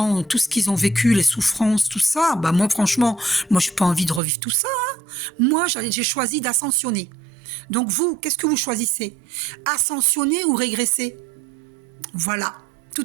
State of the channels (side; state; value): left; drops out; at 4.2 s